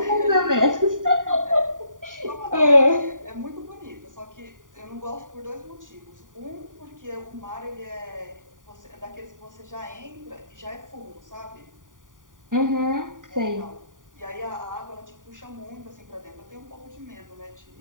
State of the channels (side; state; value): left; late; 0.88 ms